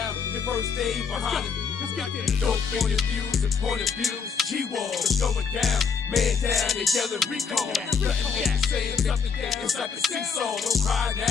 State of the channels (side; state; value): right; quieter; 5.8 dB